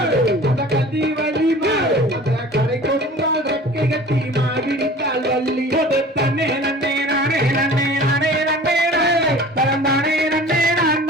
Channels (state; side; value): normal; both; correlation 0.43